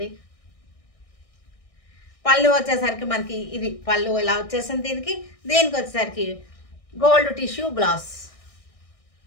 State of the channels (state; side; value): late; right; 1.6 ms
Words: పళ్ళు వచ్చేసరికి మనకి ఇది పళ్ళు ఇలా వచ్చేసింది. దీనికి వచ్చేసరికి gold tissue blouse.